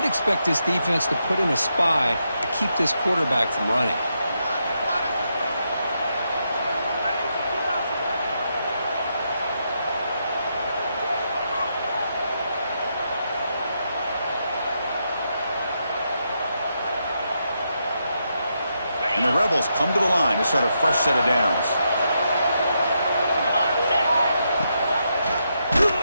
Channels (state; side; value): inverted; both; correlation -0.82